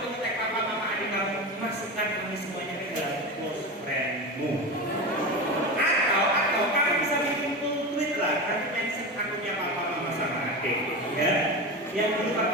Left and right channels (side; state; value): both; normal; correlation 0.23